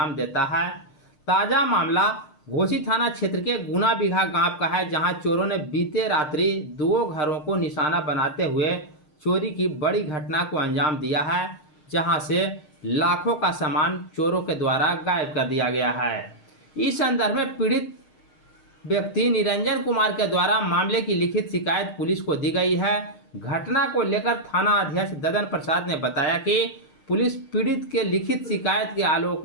देता है। ताज़ा मामला घोसी थाना क्षेत्र के गुना बिगहा गांव का है, जहां चोरों ने बीते रात्रि दो घरों को निशाना बनाते हुए चोरी की बड़ी घटना को अंजाम दिया है, जहां से लाखों का सामान चोरों के द्वारा गायब कर दिया गया है। इस संदर्भ में पीड़ित व्यक्ति निरंजन कुमार के द्वारा मामले की लिखित शिकायत पुलिस को दी गई है। घटना को लेकर थाना अध्यक्ष ददन प्रसाद ने बताया कि पुलिस पीड़ित के लिखित शिकायत के आलोक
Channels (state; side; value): late; right; 6.5 ms